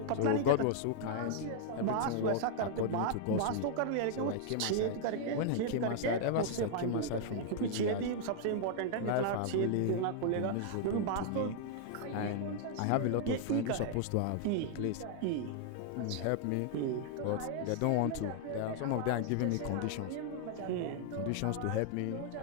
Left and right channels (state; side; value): different; both; correlation 0.00